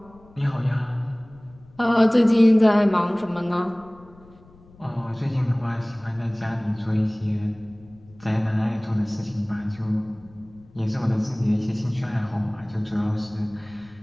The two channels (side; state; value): left; noise; rumble, 25 dB below the sound